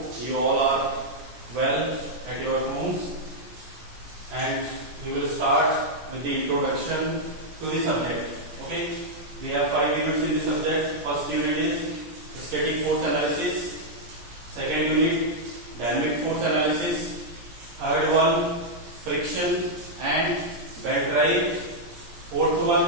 you all are well at your homes, and we will start with the introduction to the subject. Okay, we have 5 units in the subject. First unit is static force analysis. Second unit, dynamic force analysis. Third one, friction and belt drive. Fourth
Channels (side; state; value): left; late; 17 ms